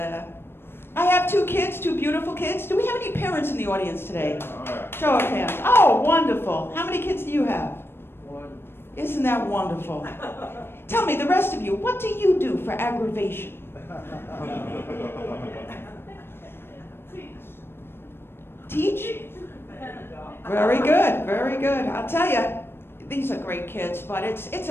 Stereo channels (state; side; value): late; right; 0.11 ms